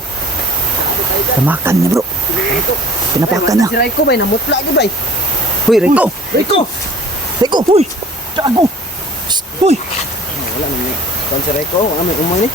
Tamakan niya bro. Pinapakan na. Si Reko ba? Namutla ka ba? Huy Raiko! Reko! Raiko! Huy! Gago! Huy! Wala naman. Kan si Reko, wala may umay ni.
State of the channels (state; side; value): normal; both; correlation 0.49